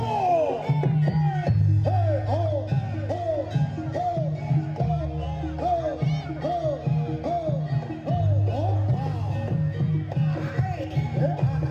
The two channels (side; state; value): both; identical; correlation 1.00